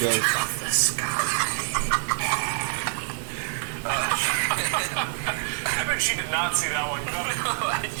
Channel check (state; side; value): silent; left; 61 dB below the other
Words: I bet she did not see that one coming.